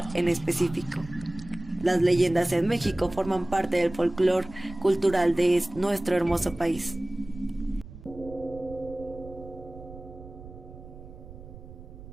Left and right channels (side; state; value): right; noise; rumble, 16 dB below the sound